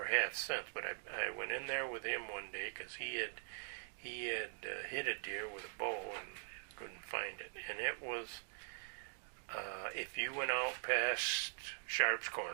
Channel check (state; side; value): silent; left; digital silence